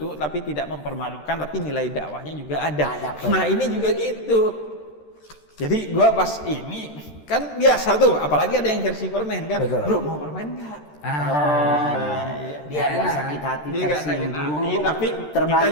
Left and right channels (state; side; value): late; right; 13 ms